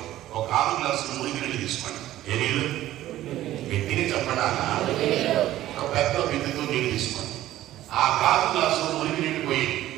ఒక 6 గ్లాసులు మురికి నీళ్ళు తీసుకోండి. ఏ నీళ్ళు? పెట్టిని చెప్పడానా ఒక పెద్ద బిందుతో నీళ్ళు తీసుకోండి. ఆ 6 గ్లాసులు మురికి నీళ్ళు పోయింది.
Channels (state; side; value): quieter; left; 14.2 dB